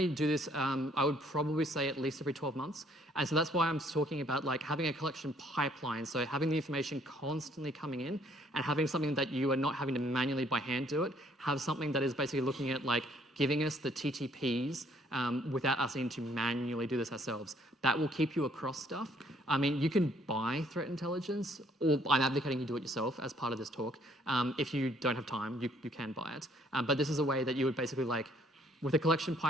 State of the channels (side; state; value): both; normal; correlation 0.63